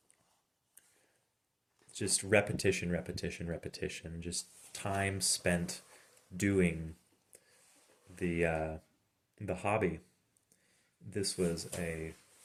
just repetition, repetition, repetition, just time spent doing the hobby. This was a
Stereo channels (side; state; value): both; identical; correlation 1.00